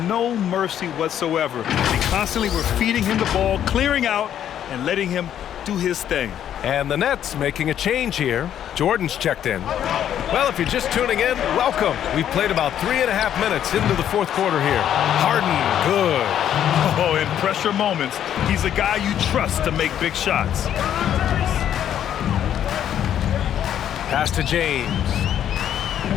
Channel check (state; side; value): quieter; right; 10.2 dB